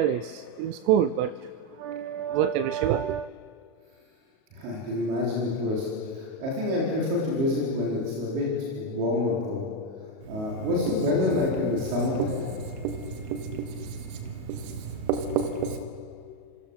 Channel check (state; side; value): late; left; 37 ms